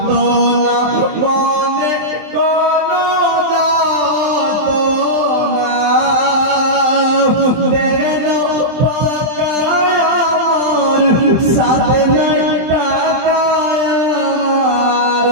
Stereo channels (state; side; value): late; left; 23 ms